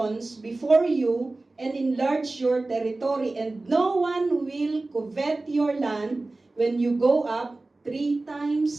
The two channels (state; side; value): quieter; left; 3.1 dB